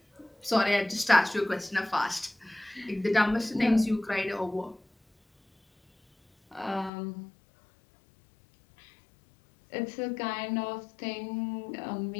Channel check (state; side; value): drops out; right; at 6.9 s